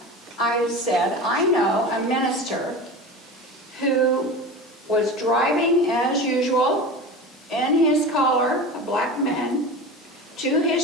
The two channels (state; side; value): normal; both; correlation 0.30